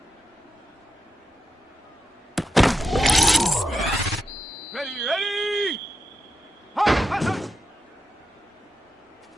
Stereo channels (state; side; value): normal; both; correlation 0.88